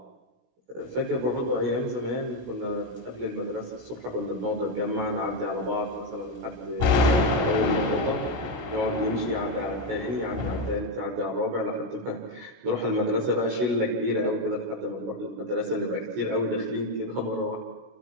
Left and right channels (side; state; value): left; late; 17 ms